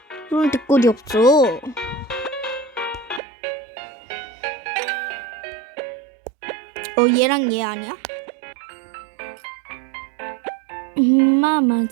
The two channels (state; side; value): drops out; left; at 3.2 s